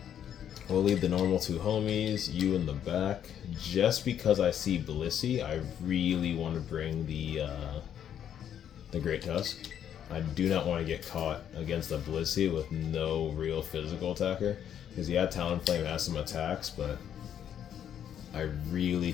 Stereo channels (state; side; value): quieter; right; 9.5 dB